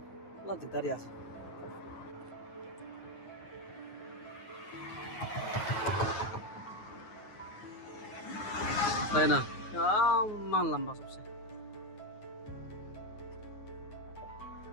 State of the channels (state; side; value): late; right; 9.5 ms